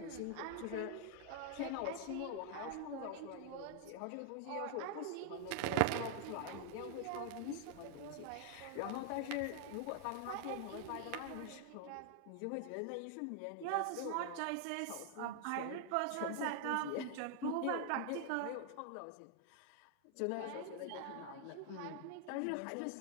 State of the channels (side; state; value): both; different; correlation 0.00